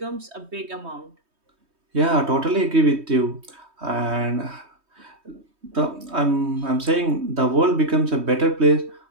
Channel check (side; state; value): left; late; 3.2 ms